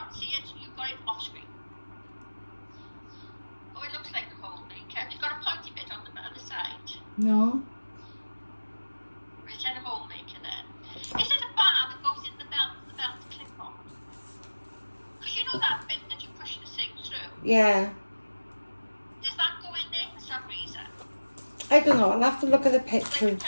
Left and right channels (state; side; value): inverted; both; correlation -1.00